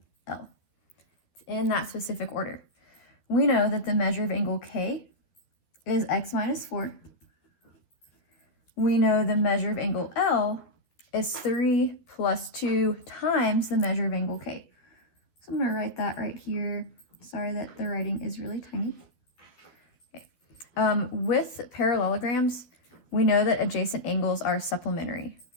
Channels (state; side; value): late; right; 12 ms